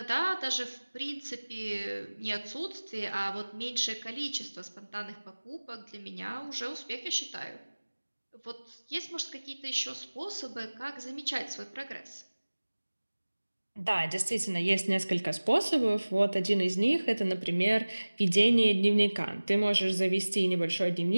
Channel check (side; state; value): both; inverted; correlation -1.00